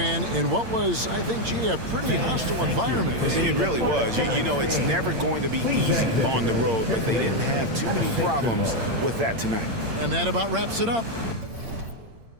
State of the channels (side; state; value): left; late; 8.7 ms